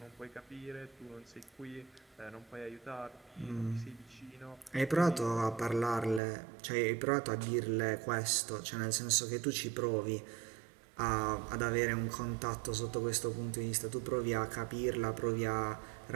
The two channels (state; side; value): drops out; left; at 6.2 s